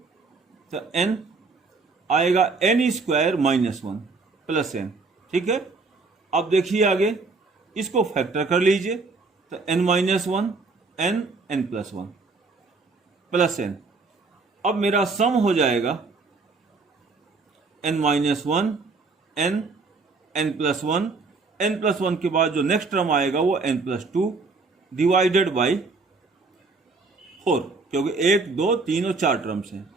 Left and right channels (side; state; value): left; quieter; 4.0 dB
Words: n आएगा n square minus 1 plus n। ठीक है, अब देखिए आगे इसको फैक्टर कर लीजिए, तो n minus 1 n plus 1 plus n। अब मेरा सम हो जाएगा n minus 1 n plus 1, n plus 1 के बाद जो नेक्स्ट टर्म आएगा वो n प्लस 2 डिवाइडेड बाई 4, क्योंकि 1 2 3 और 4 टर्म्स हैं,